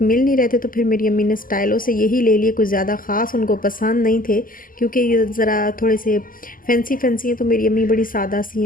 मिल नहीं रहे थे, तो फिर मेरी अम्मी ने स्टाइलों से यही ले लिए। कुछ ज़्यादा ख़ास उनको पसंद नहीं थे, क्योंकि ये ज़रा थोड़े से फैंसी फैंसी हैं। तो मेरी अम्मी बड़ी सादा सी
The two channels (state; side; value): late; right; 0.40 ms